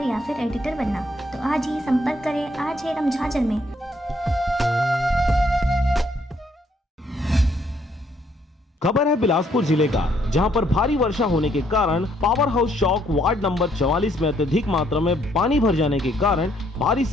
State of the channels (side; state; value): both; normal; correlation 0.69